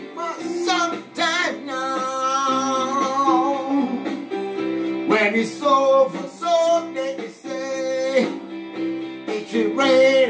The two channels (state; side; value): identical; both; correlation 1.00